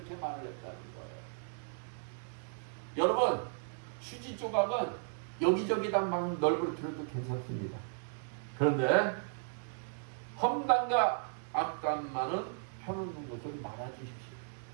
말을 했다는 거예요. 여러분, 휴지 조각은 여기저기다 막 널브러뜨려도 괜찮습니다. 그런데 험담과 악담만은 펴놓는 것을 말아주십시오.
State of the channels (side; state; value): left; silent; digital silence